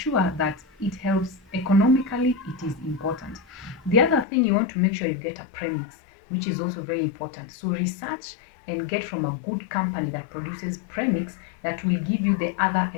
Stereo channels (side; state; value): right; drops out; at 4.2 s